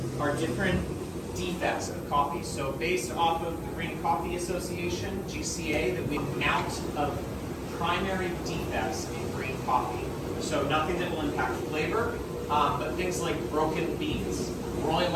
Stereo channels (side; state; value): both; identical; correlation 1.00